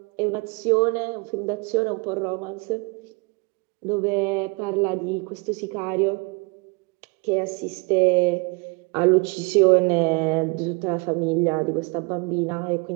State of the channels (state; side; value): quieter; left; 30.4 dB